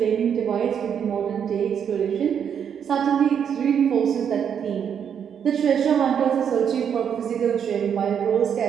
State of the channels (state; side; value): quieter; left; 8.0 dB